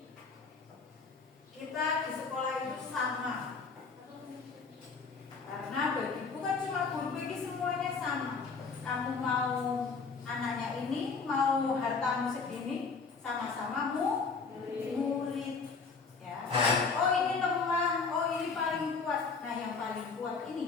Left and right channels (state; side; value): quieter; right; 4.8 dB